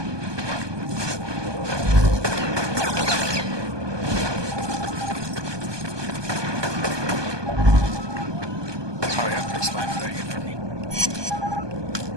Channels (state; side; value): late; left; 1.2 ms